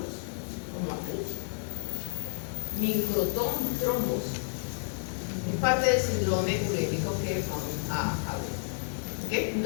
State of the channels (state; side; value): silent; right; digital silence